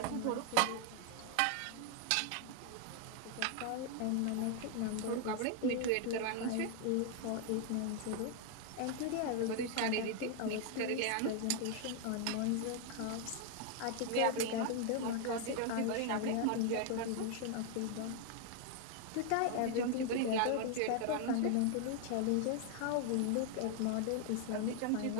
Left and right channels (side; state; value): both; different; correlation 0.00